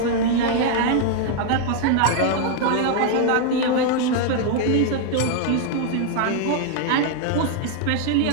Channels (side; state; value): both; different; correlation 0.00